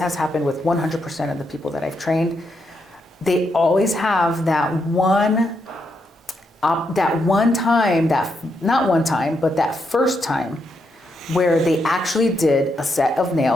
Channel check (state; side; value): normal; both; correlation 0.80